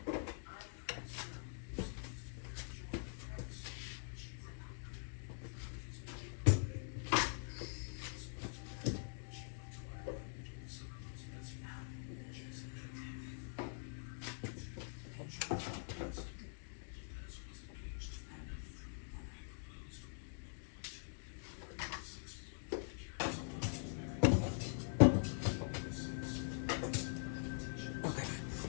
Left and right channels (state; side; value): silent; right; digital silence